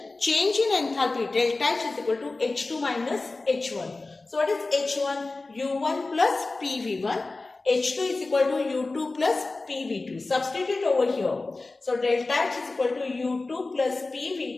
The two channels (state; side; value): quieter; right; 3.4 dB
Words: change in enthalpy delta H is equal to H2 minus H1. So what is H1? U1 plus PV1. H2 is equal to U2 plus PV2. Substitute over here. So delta H is equal to U2 plus